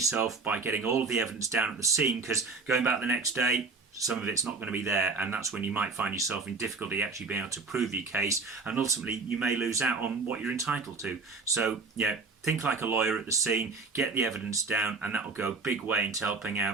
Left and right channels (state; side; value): quieter; left; 4.3 dB